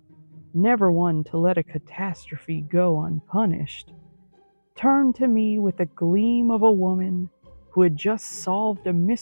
never one to let a catastrophe go unpunished, turned to me with the gleam of a woman who had just solved a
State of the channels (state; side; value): inverted; both; correlation -1.00